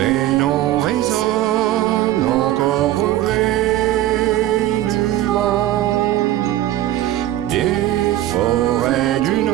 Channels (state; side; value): quieter; left; 13.9 dB